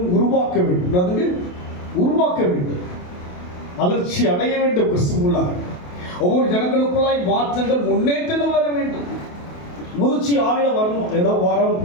உருவாக்க வேண்டும். அதுக்கு உருவாக்க வேண்டும், வளர்ச்சி அடைய வேண்டும். கிறிஸ்துவுள்ளாக ஒவ்வொரு ஜனங்களுக்குள்ளாய் மாற்றங்கள், முன்னேற்றங்கள் வர வேண்டும். முதிர்ச்சி ஆவில வரணும். ஏதோ வரோம்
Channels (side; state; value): right; late; 28 ms